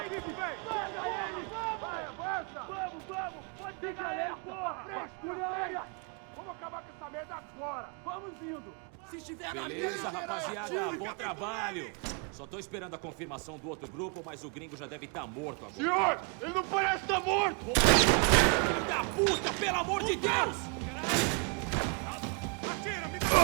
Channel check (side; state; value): left; quieter; 35.2 dB